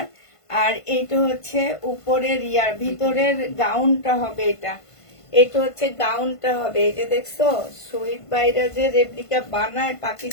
আর এটা হচ্ছে উপরের ভিতরের গাউনটা হবে। এটা হচ্ছে গাউনটা হবে। এই যে দেখছো, শহীদ ভাইরা যে রেপ্লিকা বানায়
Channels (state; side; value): late; right; 1.5 ms